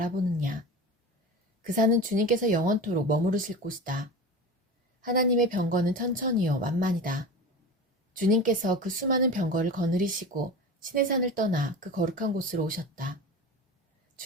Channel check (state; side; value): normal; both; correlation 0.31